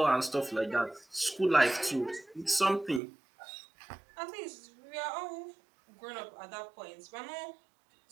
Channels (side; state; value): left; drops out; at 3.0 s